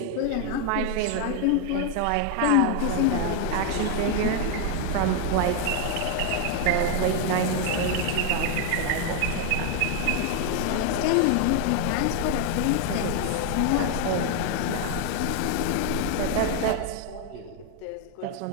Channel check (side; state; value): both; different; correlation 0.01